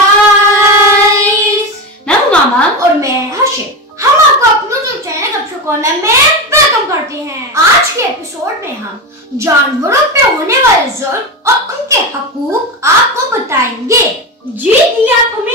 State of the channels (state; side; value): normal; both; correlation 0.19